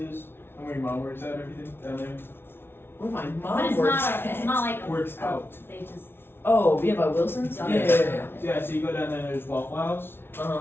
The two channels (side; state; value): right; late; 0.11 ms